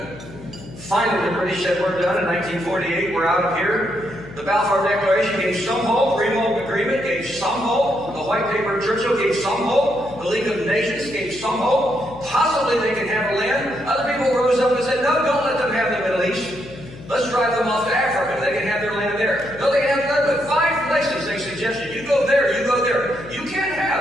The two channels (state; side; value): noise; left; hum, 16 dB below the sound